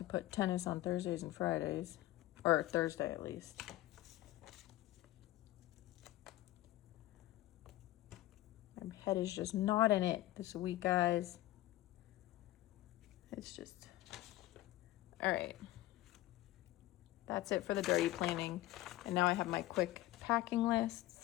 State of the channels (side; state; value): right; quieter; 16.0 dB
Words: put tennis on Thursdays and Fridays, or Thursday at least. I My head is just not in it this week, guys. It's just, all right. That's it for the dirty planning. And now I have my quick packing